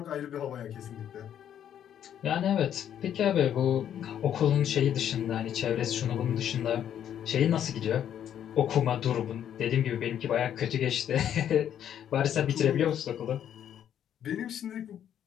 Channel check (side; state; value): right; quieter; 9.9 dB